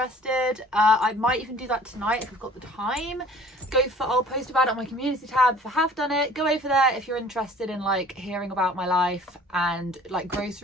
I might even do that tonight if I've got the time. I'll post about it on my community tab if I have done it. Go over there if you're interested in like hearing about my life and like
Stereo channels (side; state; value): both; normal; correlation 0.50